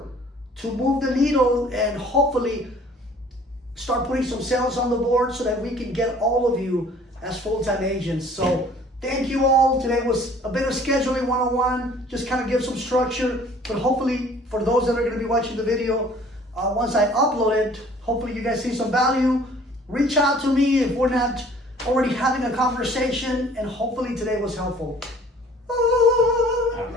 to move the needle and hopefully start putting some sales on the board so that we can get all of you as full-time agents. So thank you all. Today was a bit of scheduling 101, just kind of give some structure, but hopefully for those that are going to be watching the video, once I upload it, hopefully you guys see some value. Reach out to me if we're not already having a conversation, and hopefully today was helpful. All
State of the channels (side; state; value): both; normal; correlation 0.53